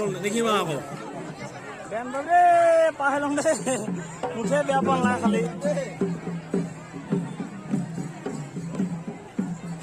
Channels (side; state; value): both; identical; correlation 1.00